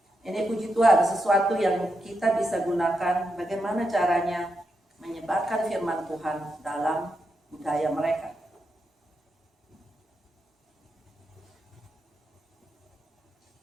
Ini puji Tuhan, sesuatu yang kita bisa gunakan bagaimana caranya menyebarkan firman Tuhan dalam budaya mereka.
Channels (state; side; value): normal; both; correlation 0.85